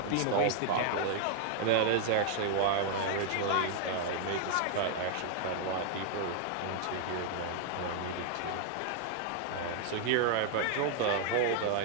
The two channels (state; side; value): different; both; correlation 0.00